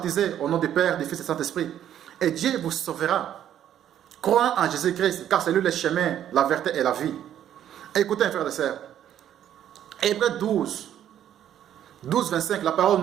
au nom du Père, du Fils et du Saint-Esprit. Et Dieu vous sauvera. Croyez en Jésus-Christ, car c'est lui le chemin, la vérité et la vie. Écoutez, mes frères et sœurs. Hébreux 12, 25, la parole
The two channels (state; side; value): quieter; left; 10.6 dB